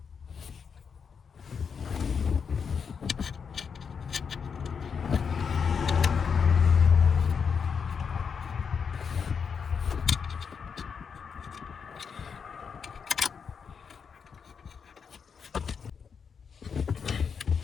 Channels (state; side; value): quieter; right; 6.3 dB